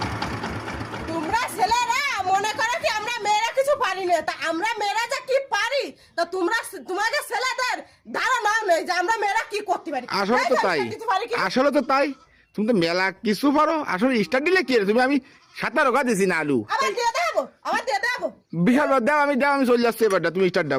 তোমরা ছেলেরা মনে করো কি আমরা মেয়েরা কিছু পারি না তা আমরা মেয়েরা যে কি পারি তা তোমরা তোমাদের ছেলেদের ধারণা নেই যে আমরা মেয়েরা কি করতে পারি আসলে তো তাই আসলে তো তাই তুমি তো মেলা কিছু পারো আসলে স্টার্ট দিলে কি তুমি আমি 17 গা দিয়েছি না আলু আমার দিয়ে দেবো বিশাল দাও আমি চলে যাচ্ছি এবারটা তুমি স্টার্ট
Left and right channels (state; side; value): identical; both; correlation 1.00